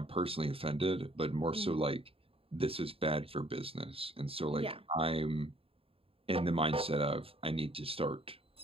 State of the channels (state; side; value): late; left; 0.27 ms